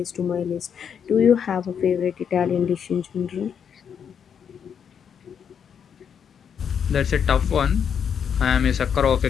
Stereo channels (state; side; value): quieter; right; 7.6 dB